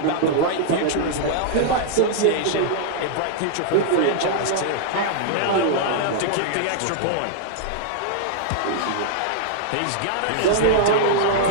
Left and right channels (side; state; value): both; different; correlation -0.01